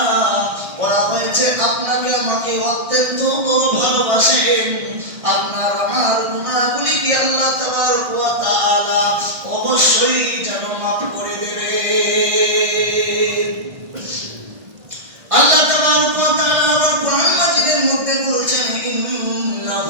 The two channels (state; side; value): late; left; 1.6 ms